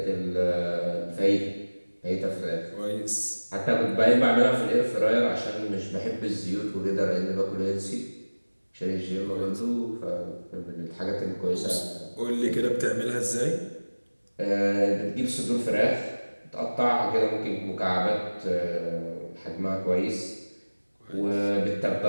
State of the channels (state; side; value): inverted; both; correlation -1.00